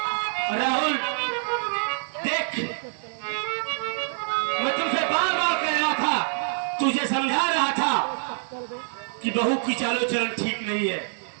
राहुल देख, मैं तुमसे बार बार कह रहा था, तुझे समझा रहा था कि बहू की चालो चलन ठीक नहीं है,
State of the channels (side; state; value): left; silent; digital silence